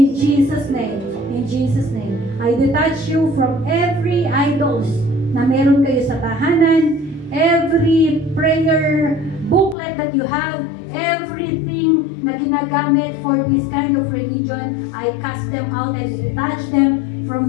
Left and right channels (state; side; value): drops out; right; at 9.8 s